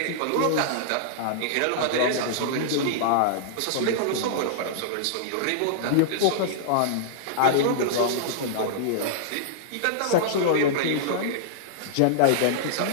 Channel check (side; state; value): both; different; correlation -0.02